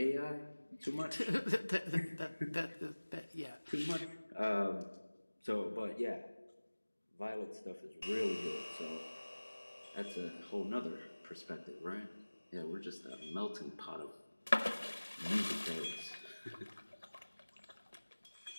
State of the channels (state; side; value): inverted; both; correlation -1.00